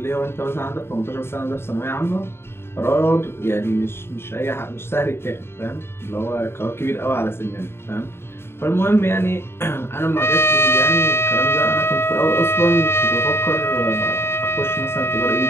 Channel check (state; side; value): late; right; 0.12 ms